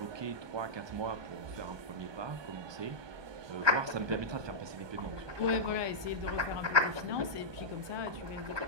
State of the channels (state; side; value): late; left; 1.2 ms